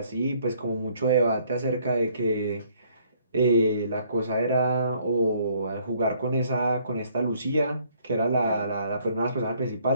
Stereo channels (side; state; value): both; inverted; correlation -0.63